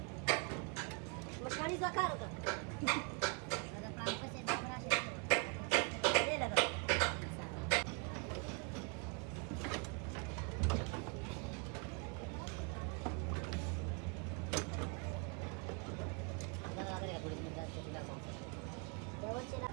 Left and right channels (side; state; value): left; quieter; 33.9 dB